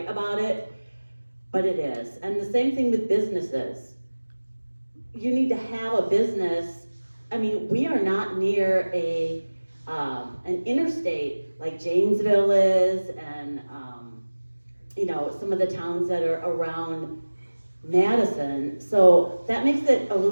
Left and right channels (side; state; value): both; inverted; correlation -1.00